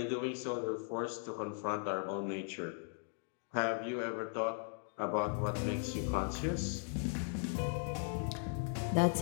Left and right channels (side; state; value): right; silent; 52 dB below the other